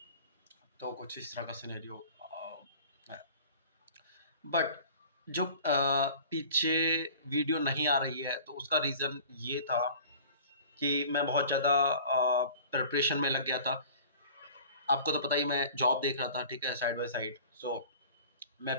तो कुछ इस तरह का सिनेरियो है। बट जो पीछे वीडियो नहीं आ रही है, तो उसका रीज़न ये था कि मैं बहुत ज़्यादा प्रिपरेशन में लग गया था। आपको तो पता ही, मैं जॉब देख रहा था, ठीक है, साइड बाय साइड। मैं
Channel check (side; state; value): both; inverted; correlation -0.44